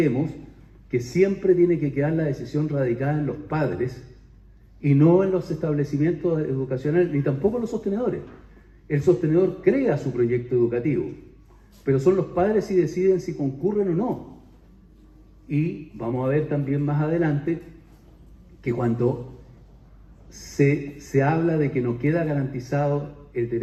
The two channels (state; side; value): identical; both; correlation 1.00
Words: que siempre tiene que quedar la decisión radicada en los padres y no en los establecimientos educacionales, ni tampoco en los sostenedores. El sostenedor crea su proyecto educativo, pero son los padres si deciden si concurren o no. Y vamos a ver también más adelante que cuando se habla de que no queda garantizado el